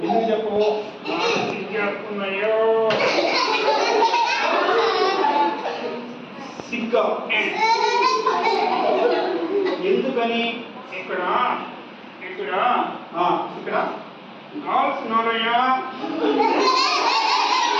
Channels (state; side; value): identical; both; correlation 1.00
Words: ఎందుకు చెప్పు? చెప్పుకున్నాయో సిగ్గా. ఎందుకని? ఇక్కడ ఇక్కడ ఇక్కడ గర్ల్స్ ఉన్నారయ్యా.